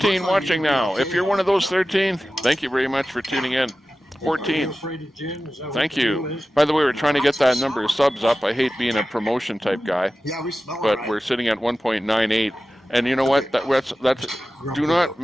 watching now. If you're one of those 13, thank you very much for tuning in. 14. Thank you. By the way, we're trying to get that number of subs up. I hate being a promotion type guy, but we're sitting at 1.98. And you know what? That's do not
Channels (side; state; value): both; normal; correlation 0.95